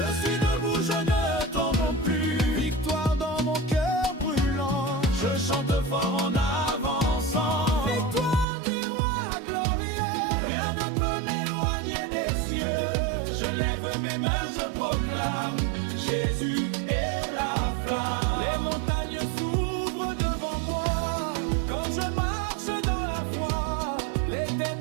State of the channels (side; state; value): left; drops out; at 8.5 s